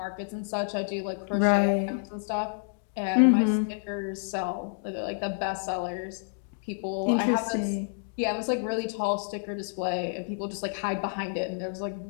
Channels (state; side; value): silent; right; digital silence